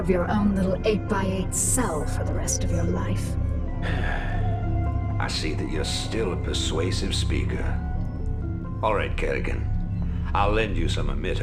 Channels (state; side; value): identical; both; correlation 1.00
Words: your own little 8x8 cell for the rest of your life. I see that you're still a persuasive speaker. All right, Kerrigan. I'll lend you some